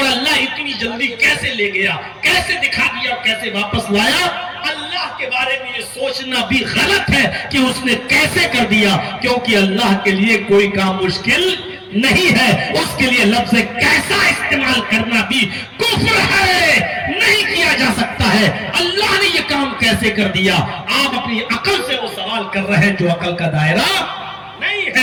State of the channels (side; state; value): both; identical; correlation 1.00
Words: اللہ اتنی جلدی کیسے لے گیا، کیسے دکھا دیا، کیسے واپس لایا؟ اللہ کے بارے میں یہ سوچنا بھی غلط ہے کہ اس نے کیسے کر دیا، کیونکہ اللہ کے لیے کوئی کام مشکل نہیں ہے۔ اس کے لیے لفظ کیسا استعمال کرنا بھی کفر ہے، نہیں کیا جا سکتا ہے۔ اللہ نے یہ کام کیسے کر دیا؟ آپ اپنی عقل سے وہ سوال کر رہے ہیں جو عقل کا دائرہ نہیں